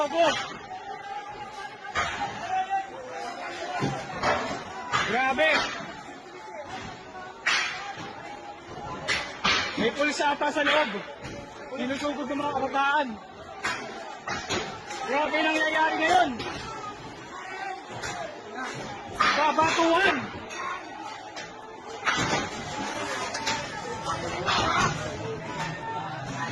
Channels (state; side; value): identical; both; correlation 1.00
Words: Grabe. May pulis ata sa loob. Sinusugod ng mga kabataan. Grabe nangyayari ngayon. Babatuhan.